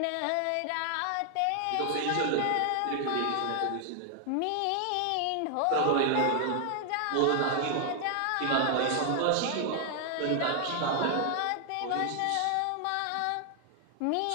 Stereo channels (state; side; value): different; both; correlation 0.00